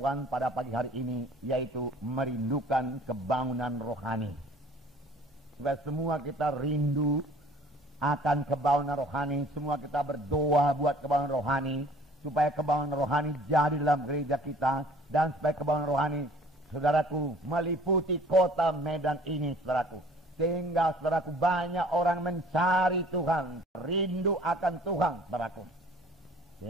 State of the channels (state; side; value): normal; both; correlation 0.52